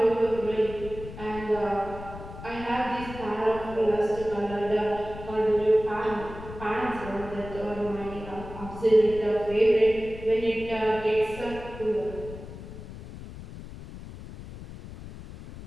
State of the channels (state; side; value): noise; left; rumble, 13 dB below the sound